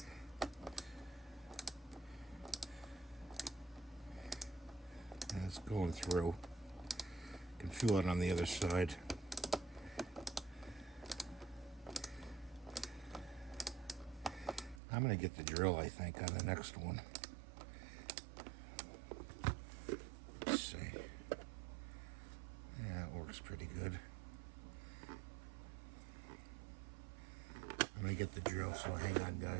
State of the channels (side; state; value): left; drops out; at 14.8 s